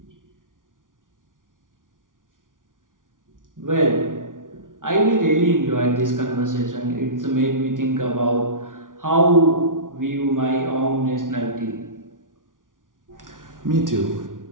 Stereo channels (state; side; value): late; left; 0.88 ms